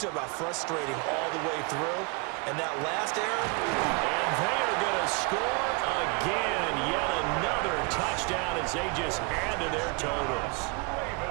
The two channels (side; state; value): left; quieter; 31.0 dB